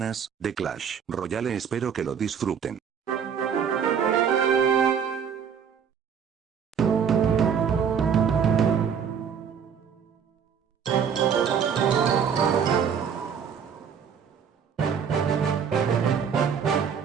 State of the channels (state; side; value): quieter; left; 7.3 dB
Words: de Clash Royale. Espero que lo disfruten.